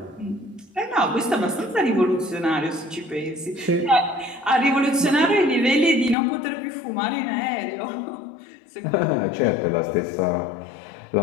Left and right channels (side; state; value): right; drops out; at 6.2 s